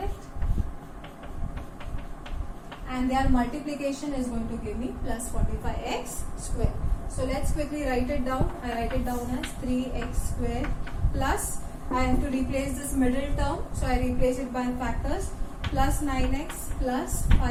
And their multiplication is going to give me plus 45x square. So let's quickly write it down. I write it down as 3x square plus, I have to replace this middle term, so I replace it by factors, plus 9x plus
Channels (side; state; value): both; identical; correlation 1.00